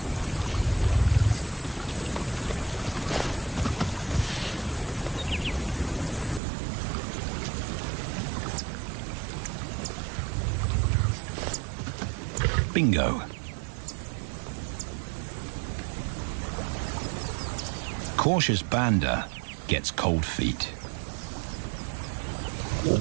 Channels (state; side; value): drops out; left; at 6.4 s